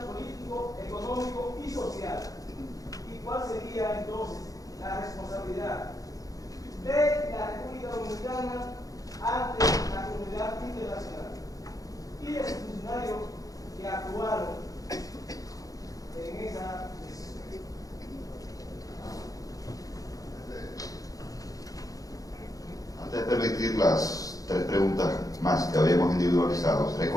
político, económico y social. ¿Y cuál sería entonces la responsabilidad de la República Dominicana ante la comunidad internacional y de los funcionarios que actuaron en esa decisión? Antes de permitir las 3 preguntas más que habíamos individualizado,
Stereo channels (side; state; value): right; late; 0.17 ms